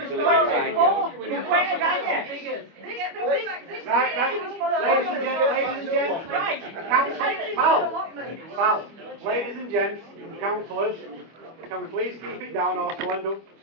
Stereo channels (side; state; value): left; late; 25 ms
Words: so Where are it's you? Right, ladies and gents, Right. Pal, ladies and gents, councillors, can we please keep it down or we'll end up